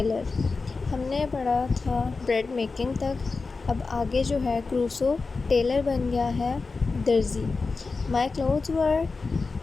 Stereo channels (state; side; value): quieter; right; 4.1 dB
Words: हमने पढ़ा था ब्रेड मेकिंग तक. अब आगे जो है क्रूसो टेलर बन गया है दर्जी. My clothes were